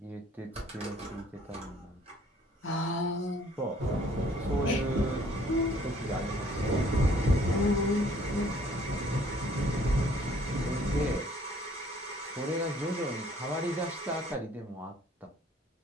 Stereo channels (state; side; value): normal; both; correlation 0.59